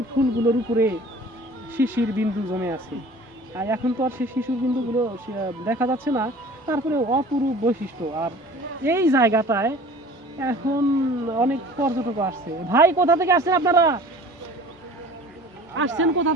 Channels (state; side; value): normal; both; correlation 0.45